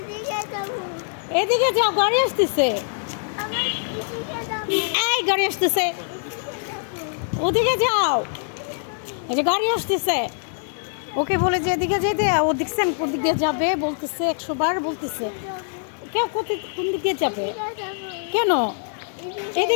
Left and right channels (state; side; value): silent; right; digital silence